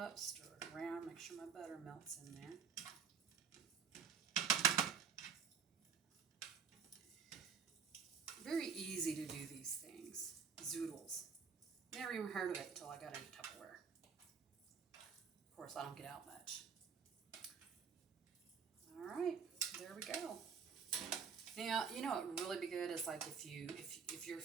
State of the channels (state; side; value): quieter; left; 6.3 dB